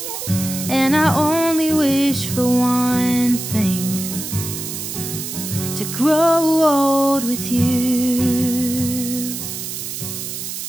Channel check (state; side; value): noise; right; hiss, 6 dB below the sound